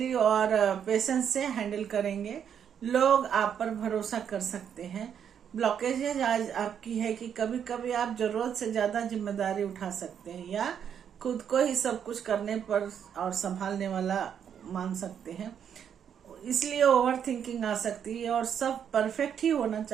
और पेशेंस से हैंडल करेंगे। लोग आप पर भरोसा कर सकते हैं। ब्लॉकेजेज आज आपकी है कि कभी कभी आप जरूरत से ज्यादा जिम्मेदारी उठा सकते हैं या खुद को ही सब कुछ करने पर और संभालने वाला मान सकते हैं, इसलिए ओवर थिंकिंग आ सकती है और सब परफेक्ट ही होना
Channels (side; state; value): left; quieter; 8.3 dB